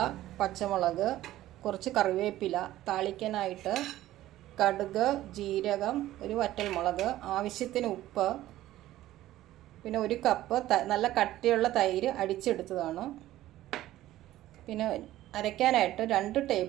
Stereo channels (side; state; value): left; quieter; 14.7 dB